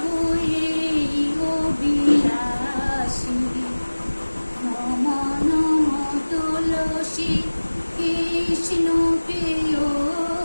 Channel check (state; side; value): inverted; both; correlation -1.00